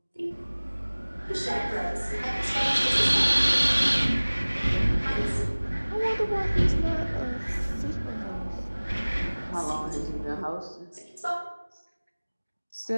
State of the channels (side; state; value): both; inverted; correlation -1.00